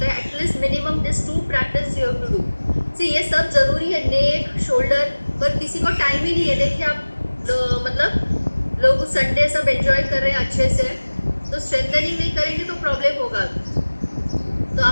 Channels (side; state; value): both; inverted; correlation -1.00